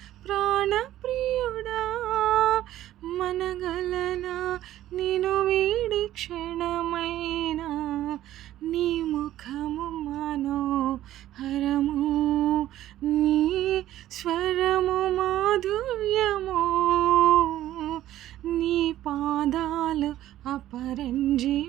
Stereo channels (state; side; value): quieter; left; 13.5 dB